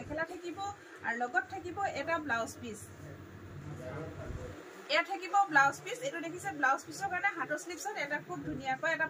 থাকিব আৰু লগত থাকিব এটা ব্লাউজ পিস এয়া থাকিব ব্লাউজ পিস এটো দেখিছে ব্লাউজ পিসৰ কাৰণে হাতৰ স্লিপছত এটা খুব ধুনিয়াকৈ এটা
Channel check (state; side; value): identical; both; correlation 1.00